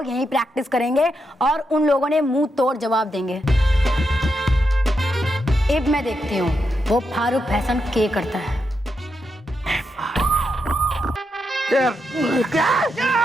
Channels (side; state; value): both; normal; correlation 0.84